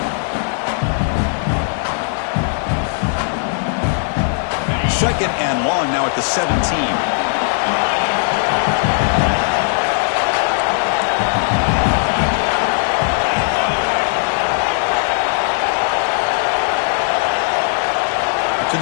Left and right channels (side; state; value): right; silent; digital silence